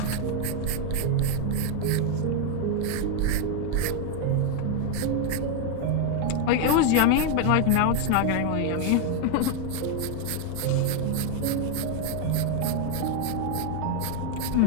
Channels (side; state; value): both; different; correlation 0.00